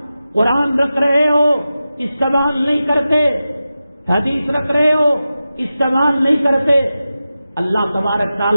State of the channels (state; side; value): inverted; both; correlation -0.93